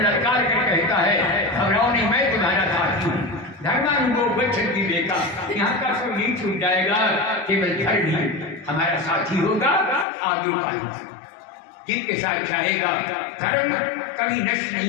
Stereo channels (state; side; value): drops out; right; at 10.1 s